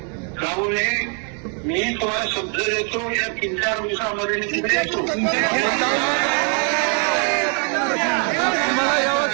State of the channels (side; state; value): left; quieter; 39.7 dB